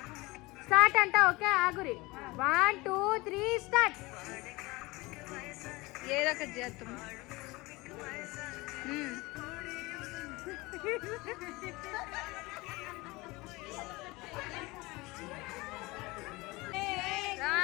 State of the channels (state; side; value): quieter; right; 22.6 dB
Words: స్టార్ట్ అంట. ఓకే ఆగురి. 1 2 3 స్టార్ట్. ఏదో ఒకటి చేద్దాం.